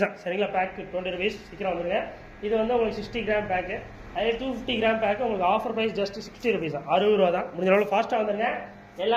தான் சரிங்களா. Pack 20 rupees. சீக்கிரம் வந்துருங்க. இது வந்து உங்களுக்கு 60 கிராம் பேக்கு. அதே 250 கிராம் பேக்கு உங்களுக்கு ஆஃபர் ப்ரைஸ் ஜஸ்ட் 60 rupees தான், 60 ரூபா தான். முடிஞ்ச அளவு ஃபாஸ்ட்டாக வந்துருங்க.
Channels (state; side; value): identical; both; correlation 1.00